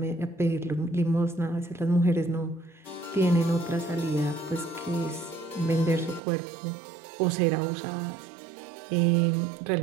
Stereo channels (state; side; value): drops out; left; at 6.2 s